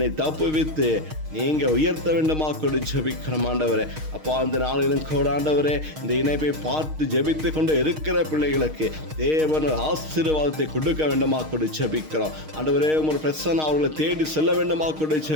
தப்புவித்து நீங்க உயர்த்த வேண்டுமா கூட ஜெபிக்கிறோம் ஆண்டவரே. அப்பா, அந்த நாளிலும் கூட ஆண்டவரே இந்த இணைப்பை பார்த்து ஜெபித்து கொண்டு இருக்கிற பிள்ளைகளுக்கு தேவன் ஆசீர்வாதத்தை கொடுக்க வேண்டுமா கூட ஜெபிக்கிறோம் ஆண்டவரே. உமது பிரசன்னம் அவர்களை தேடி செல்ல வேண்டுமா கூட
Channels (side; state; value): left; late; 6.4 ms